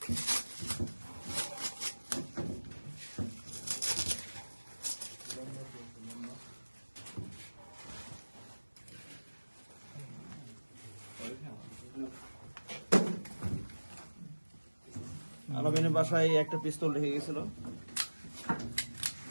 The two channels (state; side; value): inverted; both; correlation -1.00